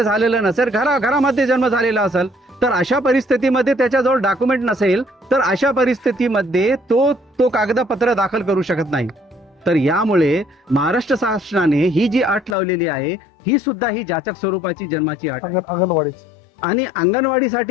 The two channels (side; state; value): right; drops out; at 12.6 s